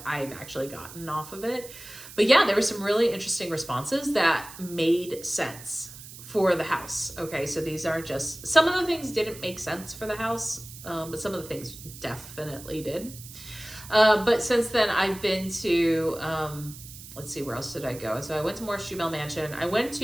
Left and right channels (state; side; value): noise; right; hiss, 15 dB below the sound